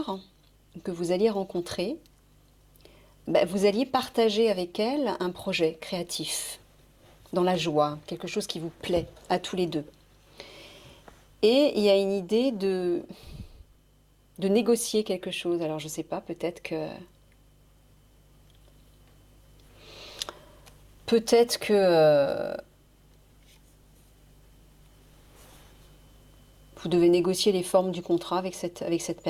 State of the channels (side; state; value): both; identical; correlation 1.00